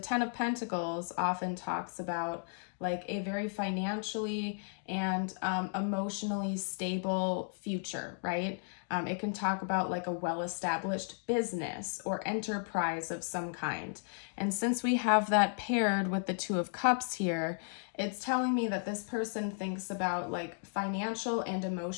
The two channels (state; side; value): silent; right; 55 dB below the other